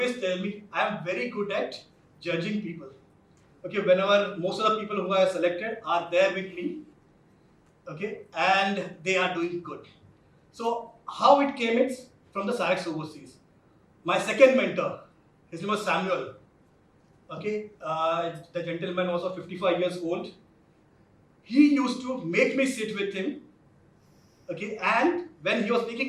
tell me I am very good at judging people. Okay, whenever most of the people who I have selected are there with me, okay, and they are doing good. So how it came is from the Sarex overseas. My second mentor, his name was Samuel. Okay, the gentleman was of 55 years old. He used to make me sit with him. Okay, and when he was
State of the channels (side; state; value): both; identical; correlation 1.00